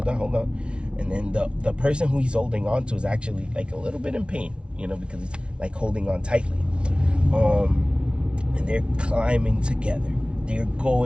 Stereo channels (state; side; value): late; left; 0.055 ms